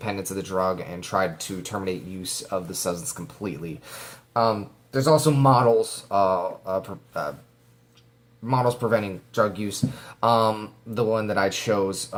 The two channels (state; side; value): identical; both; correlation 1.00